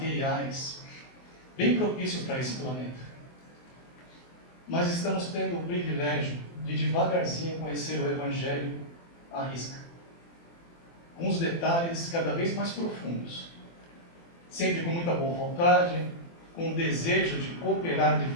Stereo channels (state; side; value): late; right; 24 ms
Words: bem propícios para esse planeta. Mas estamos tendo o privilégio de devagarzinho conhecer o Evangelho à risca, com os detalhes cada vez mais profundos, sempre com muita boa vontade, com o desejo de cooperar de